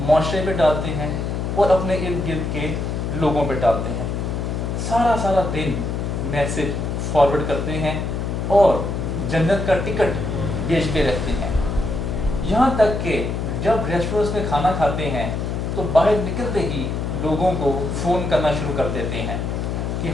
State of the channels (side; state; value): left; noise; hum, 2 dB below the sound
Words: پہ ڈالتے ہیں اور اپنے ارد گرد کے لوگوں پہ ڈالتے ہیں۔ سارا دن میسج فارورڈ کرتے ہیں اور جنت کا ٹکٹ بیچتے رہتے ہیں۔ یہاں تک کہ جب ریسٹورنٹس میں کھانا کھاتے ہیں تو باہر نکلتے ہی لوگوں کو فون کرنا شروع کر دیتے ہیں کہ